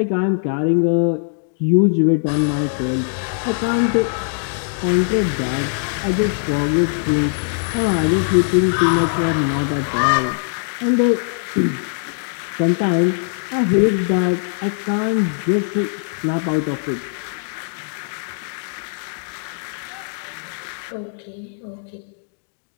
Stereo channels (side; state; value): right; silent; digital silence